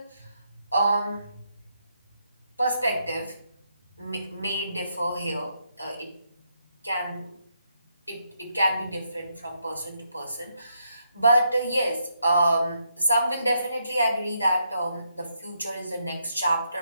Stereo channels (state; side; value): inverted; both; correlation -0.78